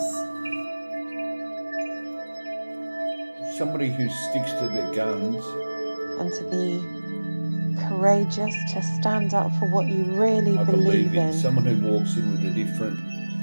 Somebody who sticks to their guns. And to be courageous, to stand up for what you really I believe in. Someone who walks in with a different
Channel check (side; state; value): both; inverted; correlation -1.00